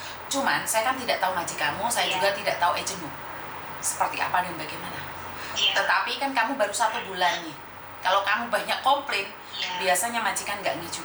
Cuman saya kan tidak tahu majikanmu, saya juga tidak tahu agenmu seperti apa dan bagaimana. Tetapi kan kamu baru 1 bulan nih. Kalau kamu banyak komplain, biasanya majikan nggak nih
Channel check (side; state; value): both; identical; correlation 1.00